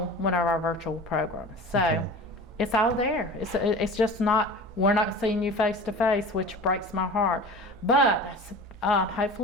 one of our virtual programs. So it's all there. It's just not, we're not seeing you face to face, which breaks my heart. But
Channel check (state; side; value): normal; both; correlation 0.37